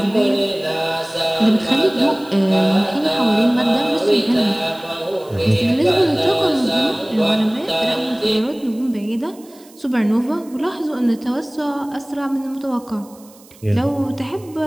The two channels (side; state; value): right; noise; hiss, 25 dB below the sound